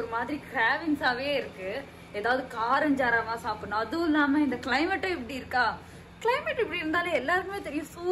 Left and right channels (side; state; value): both; identical; correlation 1.00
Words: மாதிரி கிராவிங்ஸாவே இருக்கு. ஏதாவது காரஞ்சாரமா சாப்பிடணும். அதுவும் இல்லாம இந்த கிளைமேட்டும் இப்படி இருக்கா. கிளைமேட் இப்படி இருந்தாலே எல்லாருக்குமே தெரியும்,